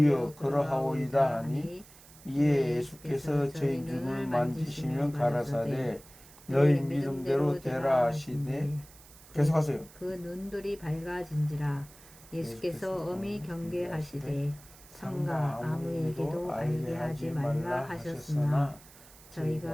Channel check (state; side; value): noise; right; hiss, 22 dB below the sound